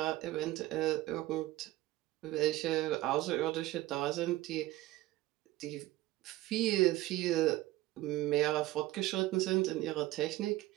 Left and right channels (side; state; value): left; quieter; 17.1 dB